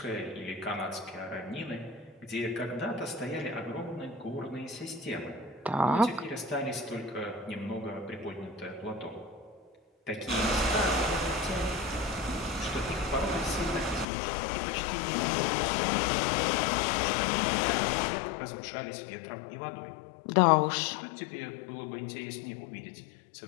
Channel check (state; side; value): drops out; right; at 14.1 s